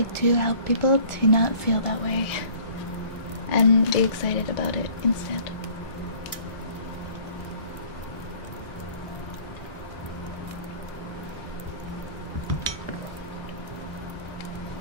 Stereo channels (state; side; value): late; right; 1.6 ms